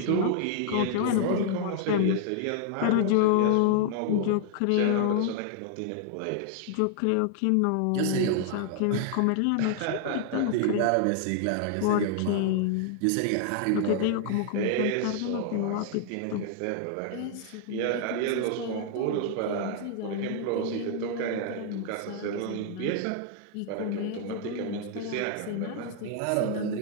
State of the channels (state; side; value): different; both; correlation 0.00